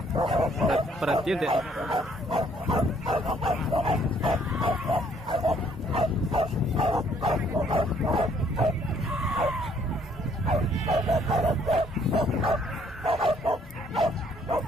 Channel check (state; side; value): normal; both; correlation 0.65